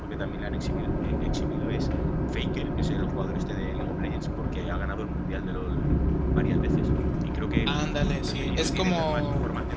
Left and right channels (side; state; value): both; identical; correlation 1.00